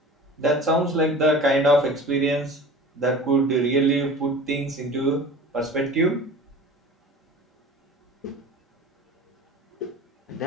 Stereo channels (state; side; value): normal; both; correlation 0.40